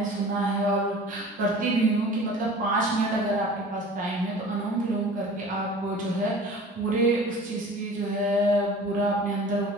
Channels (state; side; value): normal; both; correlation 0.42